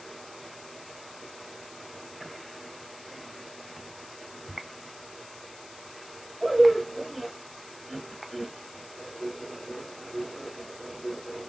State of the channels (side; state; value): left; noise; hiss, 15 dB below the sound